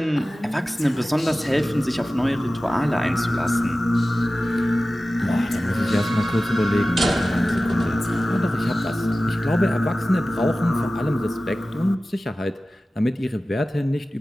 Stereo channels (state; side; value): normal; both; correlation 0.96